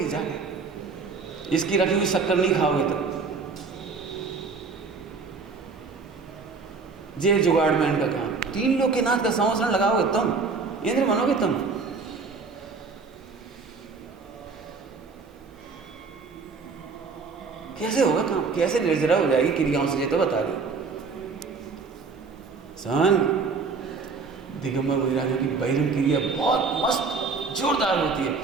जाके। इसकी रखी हुई शक्कर नहीं खाओगे तो। जे जुगाड़मैन का काम। 3 लोग के नाथ का संवत्सरण लगाओगे तुम, इंद्र बनोगे तुम। कैसे होगा काम? कैसे निर्जरा हो जाएगी क्रियाओं से, ये तो बता दो। सन दिगंबर मुनिराजों की बहिरंग क्रिया बहुत मस्त जोरदार होती है,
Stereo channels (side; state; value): left; quieter; 4.6 dB